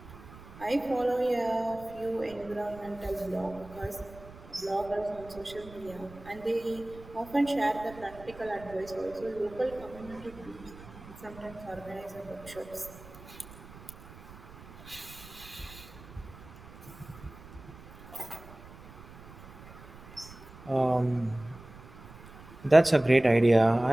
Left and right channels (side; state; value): right; noise; rumble, 18 dB below the sound